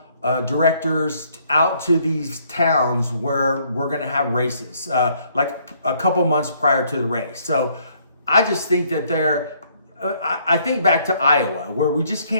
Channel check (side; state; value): both; inverted; correlation -0.66